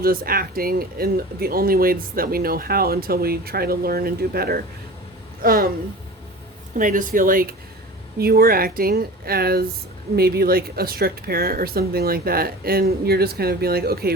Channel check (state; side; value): normal; both; correlation 0.37